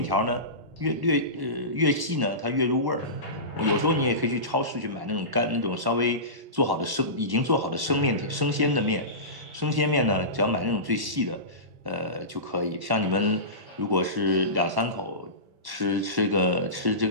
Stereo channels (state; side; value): late; left; 1.1 ms